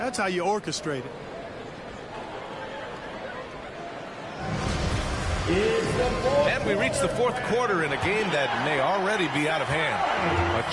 how you orchestrate it. And we reach the fourth quarter in a game that may already be out of hand. A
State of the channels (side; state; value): both; identical; correlation 1.00